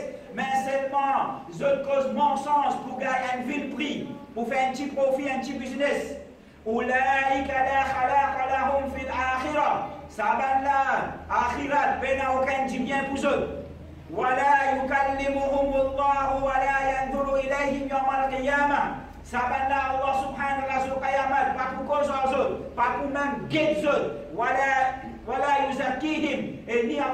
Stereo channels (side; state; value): both; identical; correlation 1.00